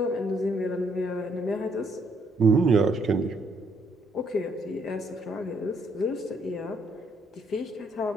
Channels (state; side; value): normal; both; correlation 0.71